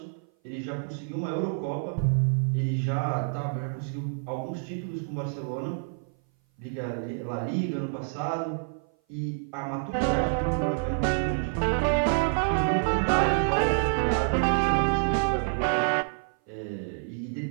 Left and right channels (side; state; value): left; silent; 57 dB below the other